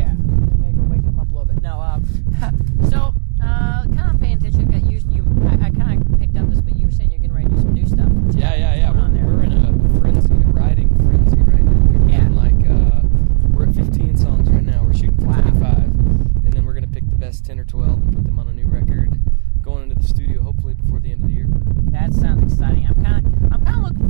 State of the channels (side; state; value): left; silent; digital silence